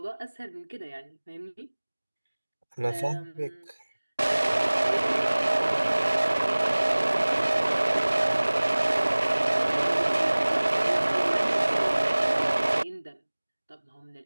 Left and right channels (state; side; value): inverted; both; correlation -1.00